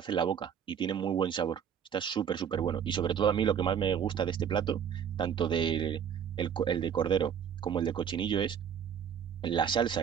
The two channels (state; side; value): quieter; left; 8.1 dB